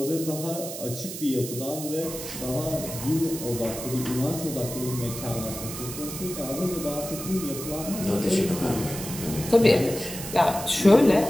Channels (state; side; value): noise; right; hiss, 9 dB below the sound